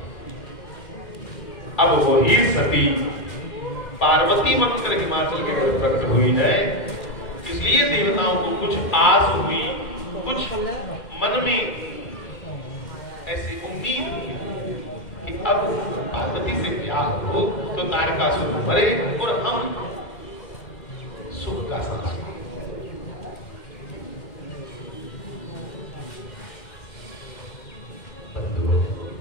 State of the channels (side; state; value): right; late; 2.1 ms